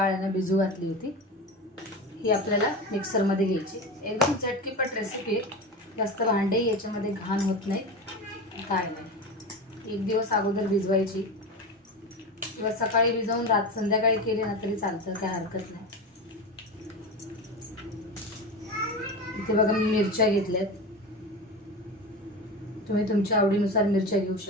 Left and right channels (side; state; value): both; normal; correlation 0.25